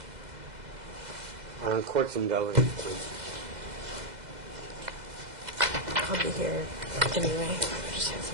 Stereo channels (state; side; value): late; left; 2.0 ms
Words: On courts and delegates, please. I'll be here anyway. I just have